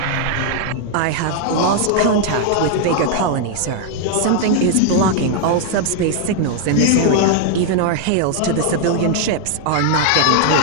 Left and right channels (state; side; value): different; both; correlation 0.00